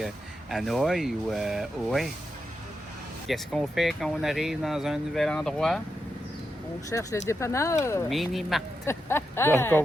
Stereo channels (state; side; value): normal; both; correlation 0.86